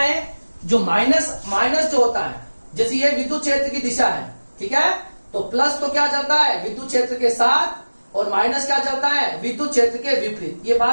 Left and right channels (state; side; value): inverted; both; correlation -1.00